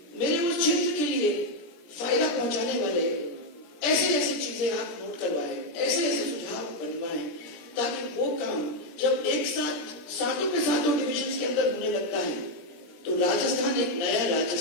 मेरे उस क्षेत्र के लिए फायदा पहुंचाने वाले ऐसे चीजें आप नोट करवाएं, ऐसे सुझाव बनवाएं, ताकि वो काम जब एक साथ सातों के सातों डिविजन के अंदर होने लगता है तो राजस्थान एक नया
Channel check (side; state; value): right; late; 17 ms